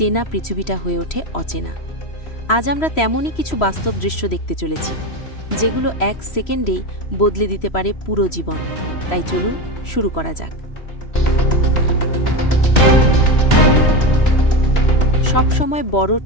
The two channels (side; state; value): right; late; 3.0 ms